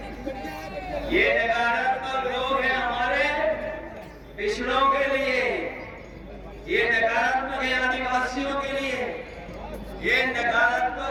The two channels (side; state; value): both; identical; correlation 1.00